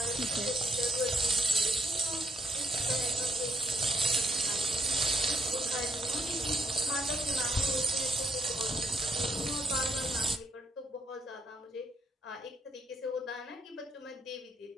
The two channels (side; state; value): both; normal; correlation 0.74